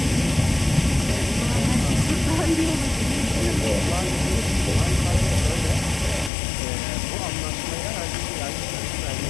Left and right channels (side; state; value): right; drops out; at 6.3 s